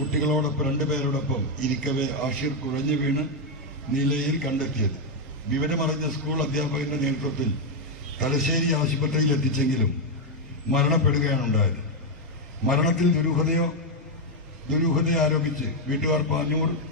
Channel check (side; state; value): both; normal; correlation 0.01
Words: 2 പേരോടൊപ്പം ഇരിക്കവേ ആഷിർ കുഴഞ്ഞു വീണ് നിലയിൽ കണ്ടെത്തിയത്. വിവരമറിഞ്ഞ സ്കൂൾ അധ്യാപകന്റെ നേതൃത്വത്തിൽ തലശ്ശേരി ആശുപത്രിയിൽ എത്തിച്ചെങ്കിലും മരണപ്പെടുകയാണ് ഉണ്ടായത്. മരണത്തിൽ ദുരൂഹതയെ ആരോപിച്ച് വീട്ടുകാർ പാനൂർ